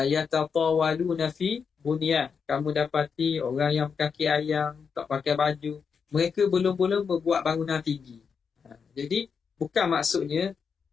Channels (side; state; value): right; quieter; 6.1 dB